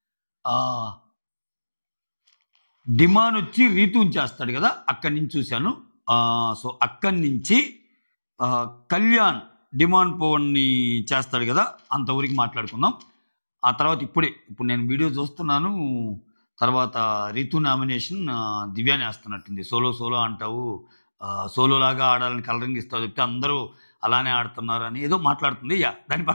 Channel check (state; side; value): inverted; both; correlation -1.00